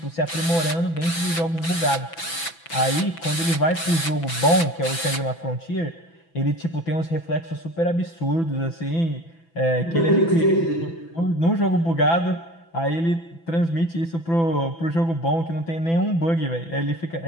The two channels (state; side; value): late; right; 6.0 ms